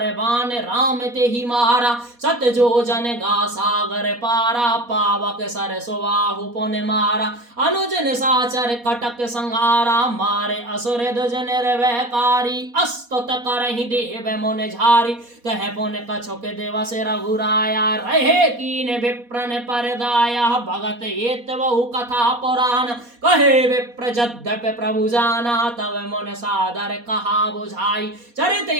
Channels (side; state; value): left; late; 4.2 ms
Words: राम ते ही मारा, सत जो जन गा सागर पारा, पावक सर सुबाहु पुन मारा, अनुजन साचर कटक संहारा, मारे असुर दुज निर्भयकारी, अस्त करहि देव मुन झारी, तह पुन कछुक दिवस रघुराया, रहे कीन विप्रन परदाया, भगत एत बहु कथा पुराण, कहे विप्र यद्यपि प्रभु जाना, तब मुन सादर कहा बुझाई, चरित